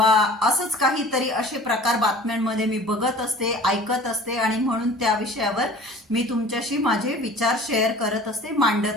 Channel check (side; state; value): both; normal; correlation 0.44